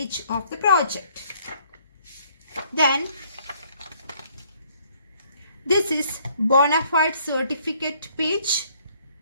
of the project. Then this is bona fide certificate page.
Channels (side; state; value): both; inverted; correlation -0.64